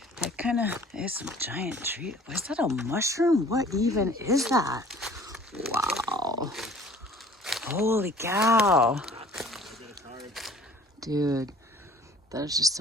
That kind of is some giant tree. Is that a mushroom? What even is that? Wow. Holy cow. Dude, there's just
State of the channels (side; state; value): both; normal; correlation 0.51